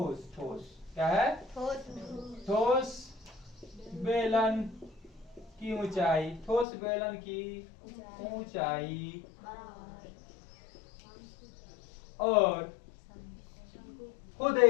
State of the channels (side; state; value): right; drops out; at 6.7 s